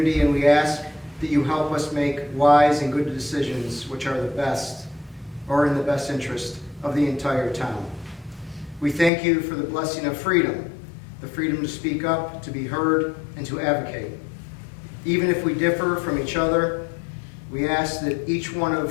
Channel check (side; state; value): right; drops out; at 9.1 s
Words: and we ask that you help us make wise and good decisions which are the best or in the best interest of the entire town. We thank you for the blessing of freedom, the freedom to speak up, to be heard, and to advocate. Even if we differ from each other, we ask that each one